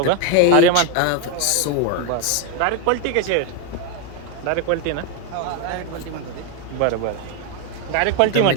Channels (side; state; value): both; different; correlation 0.01